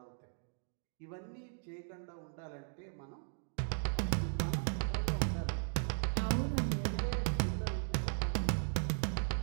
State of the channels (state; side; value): silent; left; digital silence